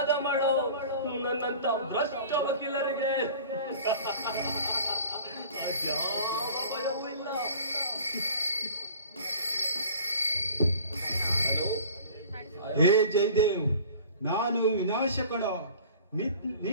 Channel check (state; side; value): inverted; both; correlation -0.44